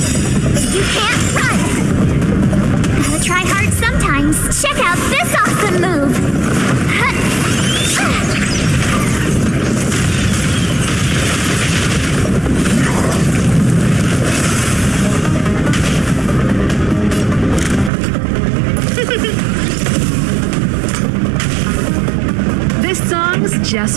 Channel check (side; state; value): left; drops out; at 17.9 s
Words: You can't run. Gotta try hard sometimes. Check out this awesome move.